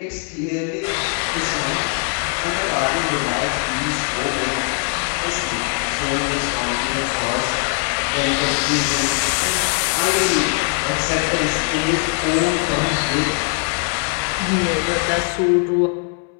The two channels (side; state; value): right; quieter; 39.5 dB